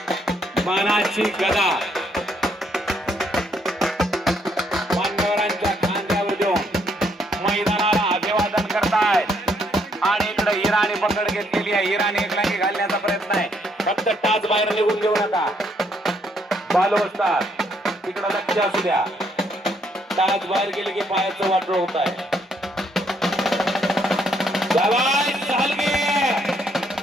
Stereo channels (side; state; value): both; normal; correlation 0.71